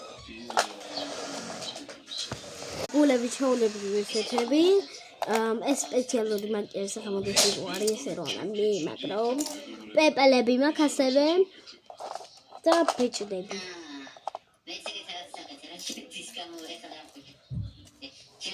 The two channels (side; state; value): both; identical; correlation 1.00